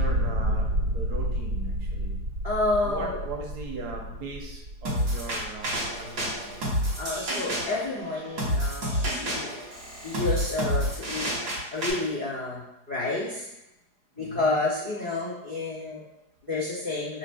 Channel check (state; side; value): late; left; 4.8 ms